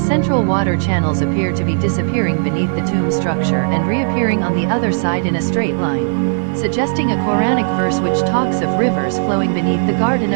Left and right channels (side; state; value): left; silent; digital silence